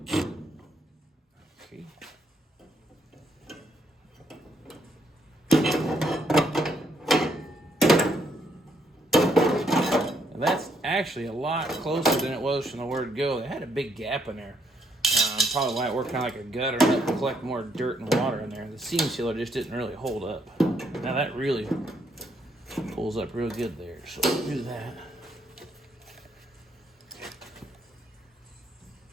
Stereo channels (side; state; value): both; normal; correlation 0.72